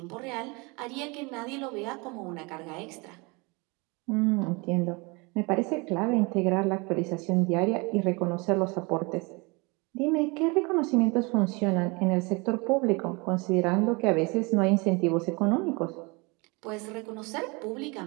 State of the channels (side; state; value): left; quieter; 27.9 dB